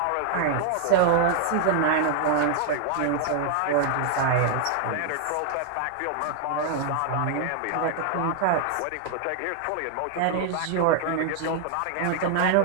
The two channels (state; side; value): different; both; correlation 0.00